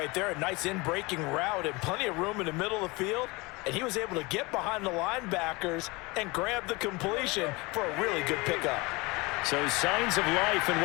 there. A nice in-breaking route and plenty of room in the middle of the field. And he was able to get behind the linebackers and grab the completion for a really good pickup. So signs of life in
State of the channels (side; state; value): right; quieter; 24.7 dB